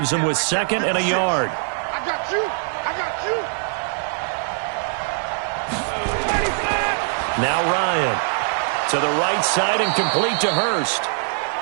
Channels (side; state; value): left; silent; digital silence